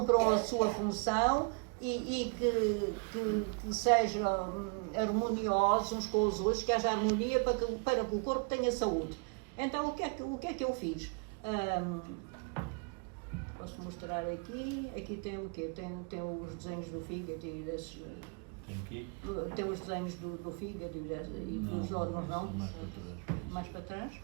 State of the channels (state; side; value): quieter; left; 35.6 dB